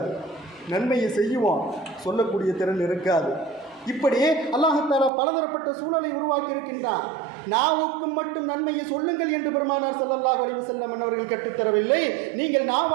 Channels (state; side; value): drops out; left; at 5.1 s